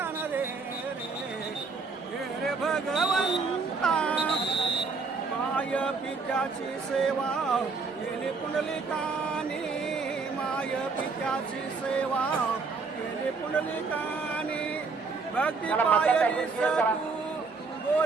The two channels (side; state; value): left; quieter; 4.4 dB